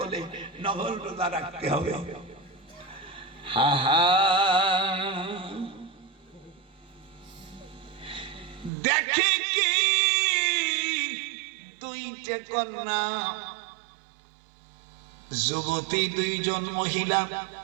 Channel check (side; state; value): left; drops out; at 8.7 s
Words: নফল রোজা রাখতে হবে। হা হা, দেখে কি 2টে কন্যা, যুবতী 2 জন মহিলা,